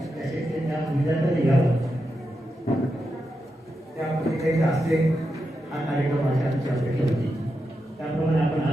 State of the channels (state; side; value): normal; both; correlation 0.87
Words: त्या विद्यार्थ्यांनी घ्यावा, त्यामध्ये काही असते हा कार्यक्रम आमची अपेक्षा होती. त्याप्रमाणे आपण